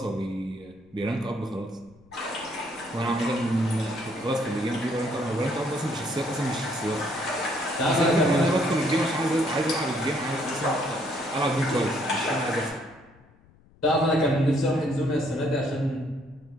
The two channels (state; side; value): noise; left; rumble, 28 dB below the sound